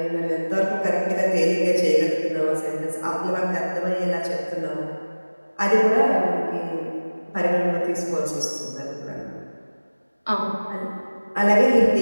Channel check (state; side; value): inverted; both; correlation -1.00